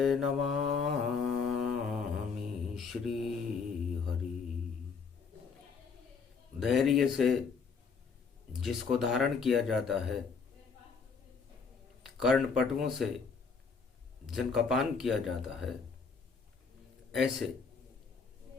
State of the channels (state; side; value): quieter; right; 5.3 dB